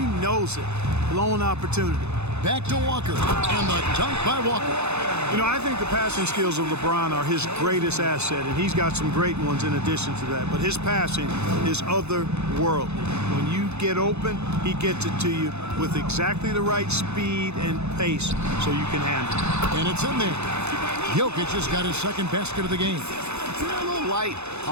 knows it. Blown opportunity. Back to Walker, and the dunk by Walker. You know, I think the passing skills of LeBron are his greatest asset, and he's got some great ones in addition to that. But his passing is otherworldly. When you get open, he gets it to you with exactly the right speed and pace so you can handle it. And it's in there. Jokic has got his second basket of the game. A little light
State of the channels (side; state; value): left; late; 0.81 ms